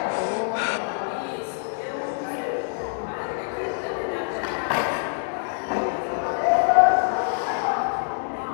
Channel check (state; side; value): silent; right; digital silence